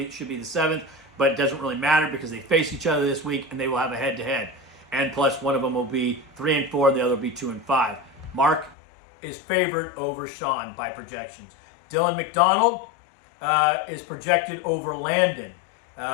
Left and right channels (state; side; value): drops out; right; at 8.8 s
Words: should be the 7th, but it doesn't really matter because they face each other this week and they will have a head-to-head. And plus, one of them will be 3-4, the other will be 2-5. Mark is favored over Sean by projections. Dylan McDonald is projected over Landon